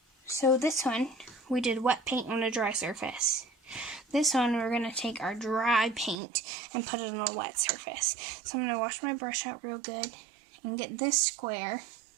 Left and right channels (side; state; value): left; drops out; at 6.2 s